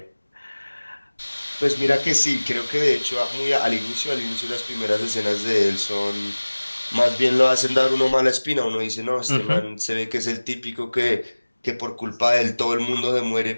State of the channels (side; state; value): both; inverted; correlation -1.00